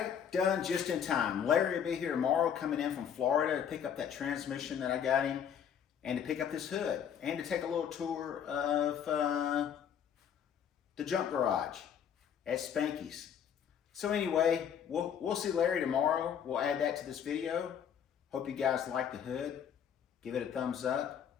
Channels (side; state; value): right; quieter; 8.4 dB